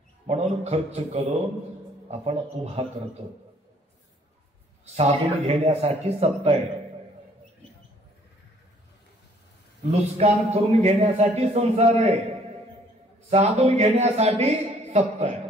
म्हणून खर्च करून आपण उभा करतो. साधून घेण्यासाठी सत्ता आहे, लुस्कान करून घेण्यासाठी संसार आहे, साधून घेण्यासाठी सत्ता आहे.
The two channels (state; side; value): normal; both; correlation 0.60